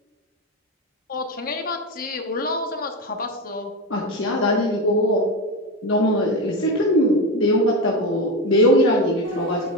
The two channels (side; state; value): both; normal; correlation 0.17